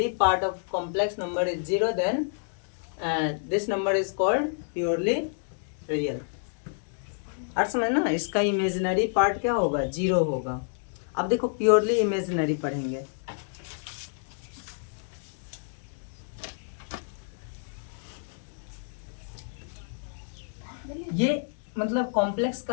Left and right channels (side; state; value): right; silent; digital silence